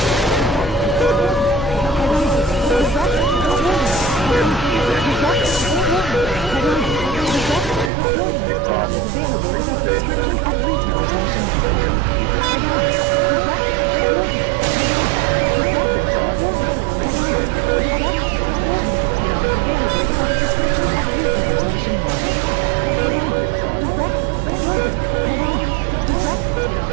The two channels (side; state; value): left; drops out; at 7.9 s